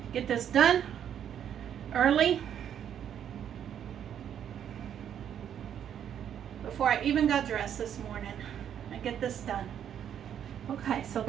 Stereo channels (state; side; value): quieter; left; 9.4 dB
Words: get this done early before I even got dressed this morning and get this done. Okay, so